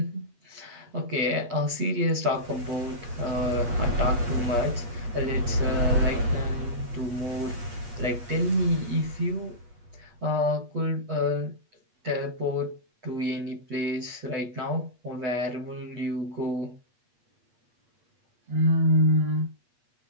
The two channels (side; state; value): left; late; 8.4 ms